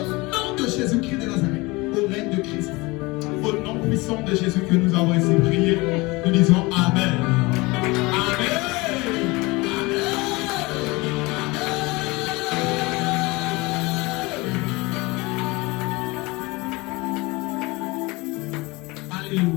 nom de Jésus-Christ de Nazareth, au règne de Christ. Au nom puissant de Jésus que nous avons ainsi prié, nous disons Amen. Amen.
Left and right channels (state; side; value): quieter; right; 23.8 dB